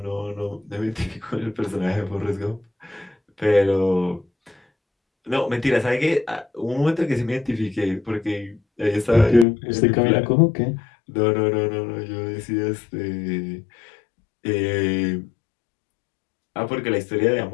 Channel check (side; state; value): right; drops out; at 9.5 s